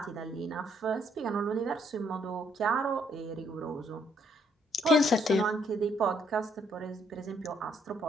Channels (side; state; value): both; normal; correlation 0.70